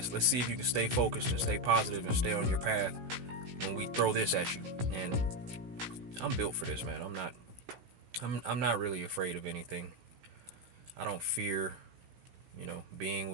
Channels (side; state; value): left; late; 17 ms